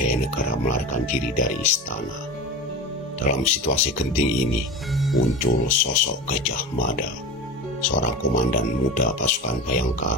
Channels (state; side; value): normal; both; correlation 0.28